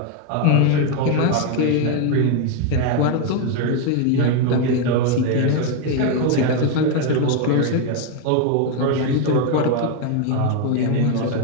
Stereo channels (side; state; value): both; different; correlation 0.01